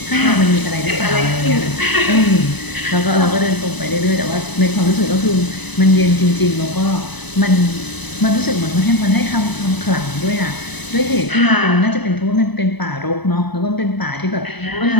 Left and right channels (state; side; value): late; right; 0.99 ms